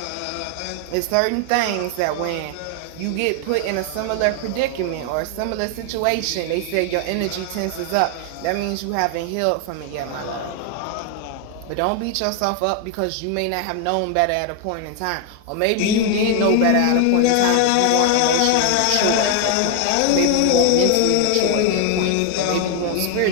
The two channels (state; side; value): different; both; correlation 0.00